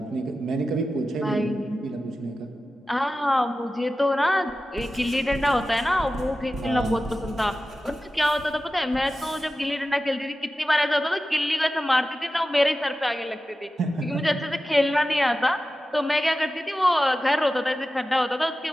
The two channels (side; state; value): both; normal; correlation 0.94